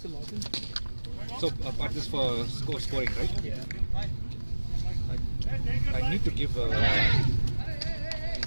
login? so part this for scoring, right? Yeah. I need to give.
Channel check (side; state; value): both; inverted; correlation -1.00